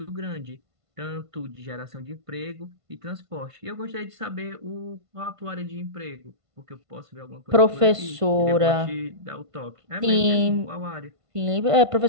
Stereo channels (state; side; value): late; left; 1.5 ms